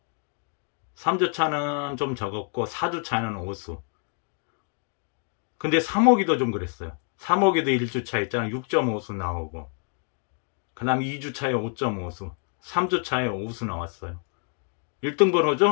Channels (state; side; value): quieter; right; 39.9 dB